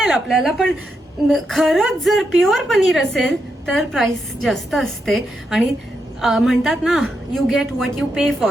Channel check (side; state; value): both; normal; correlation 0.83